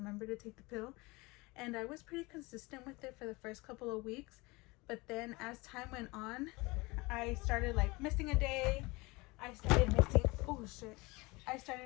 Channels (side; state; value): right; quieter; 24.2 dB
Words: to take the pill. And I was pretty consistent with it for the first couple of weeks, but then as time went on, I started like missing a day, I started missing, oh shit, I